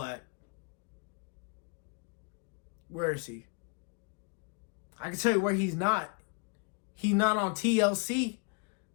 Where is he? I can tell you where he's not. He's not on TLC.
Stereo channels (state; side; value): quieter; right; 32.4 dB